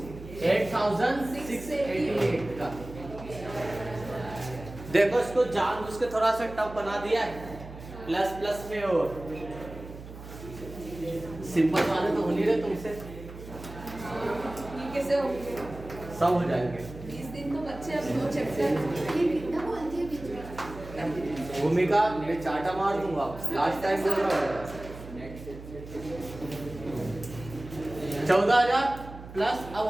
का। देखो इसको जानबूझ के थोड़ा सा टफ बना दिया है, प्लस प्लस में और सिंपल वाले तो हो नहीं रहे तुमसे, ये कैसे हो गया? सब हो जाएंगे। 20 दिन तो बच्चे अब 2 चैप्टर ये कितना बोलती है बीच में? भूमिका मैं चाटा मार दूंगा, लास्ट टाइम बोल रहा हूँ। 14,000 प्लस अब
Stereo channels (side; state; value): right; noise; hum, 14 dB below the sound